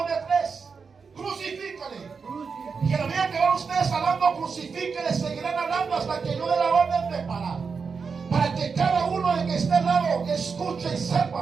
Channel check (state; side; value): quieter; left; 5.3 dB